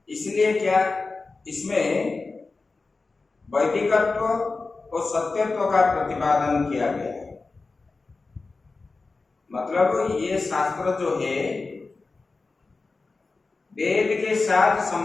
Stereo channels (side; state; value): right; quieter; 3.9 dB